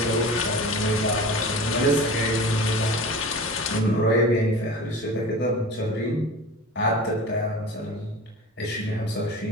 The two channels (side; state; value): both; normal; correlation 0.35